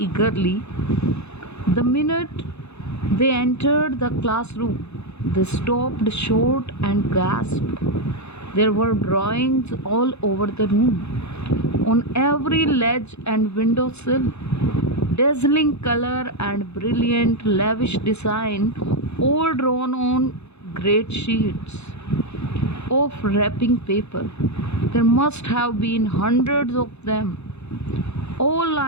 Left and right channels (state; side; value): late; right; 0.81 ms